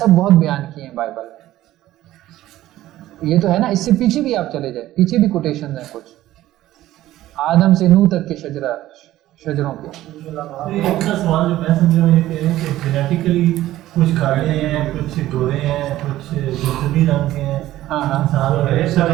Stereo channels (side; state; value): left; quieter; 14.8 dB